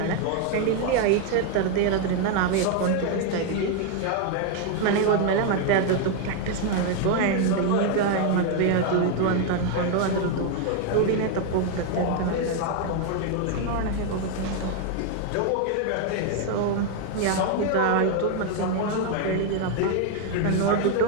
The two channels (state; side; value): different; both; correlation 0.01